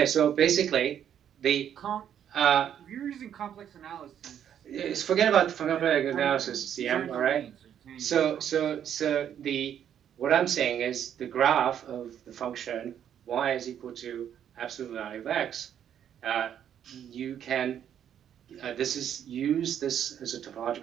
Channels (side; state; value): left; quieter; 9.4 dB